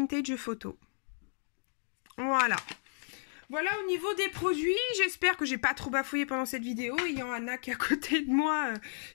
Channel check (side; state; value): right; silent; digital silence